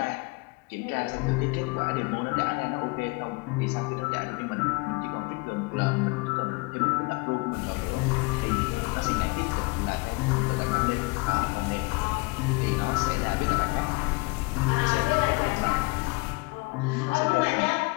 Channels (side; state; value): right; quieter; 26.8 dB